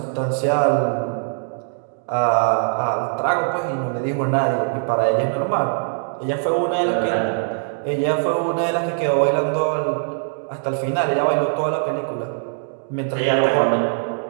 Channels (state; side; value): silent; left; digital silence